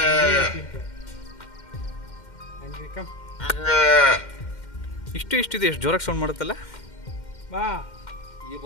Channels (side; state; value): right; late; 2.1 ms